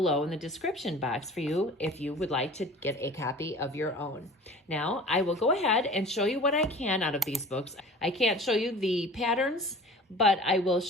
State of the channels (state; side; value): normal; both; correlation 0.42